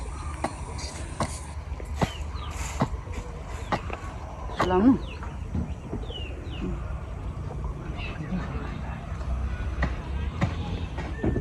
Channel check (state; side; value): identical; both; correlation 1.00